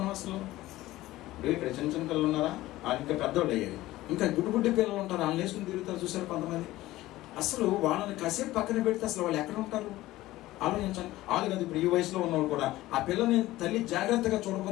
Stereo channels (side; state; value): right; quieter; 16.8 dB